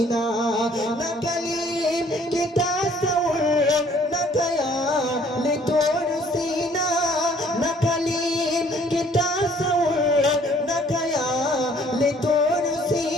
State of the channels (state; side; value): normal; both; correlation 0.59